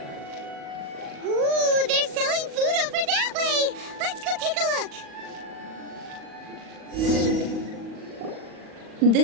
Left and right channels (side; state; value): left; late; 39 ms